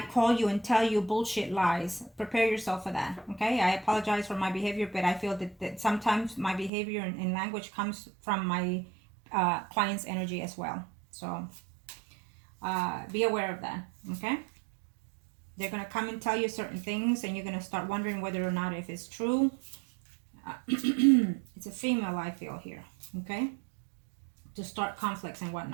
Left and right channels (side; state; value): left; drops out; at 6.7 s